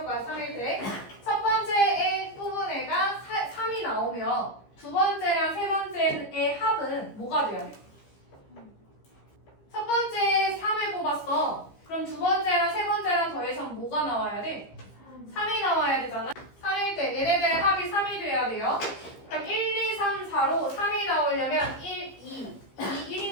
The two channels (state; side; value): late; right; 15 ms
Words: 거야. 3일 때. 첫 번째에 뽑은 애가 3이 나오면 두 번째랑 세 번째의 합은 뭐가 돼야 돼? 첫 번째 3을 뽑았어. 그럼 두 번째랑 세 번째랑 더해서 뭐가 나와야 돼? 3이 나와야 되잖아. 3일 때 얘네들의 합이 3이 돼야 돼요. 그럼 1, 2, 3, 4로 3이 나오려면 1, 2,